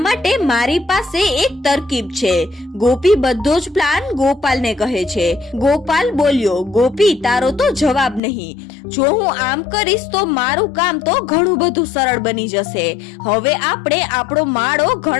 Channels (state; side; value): drops out; right; at 8.2 s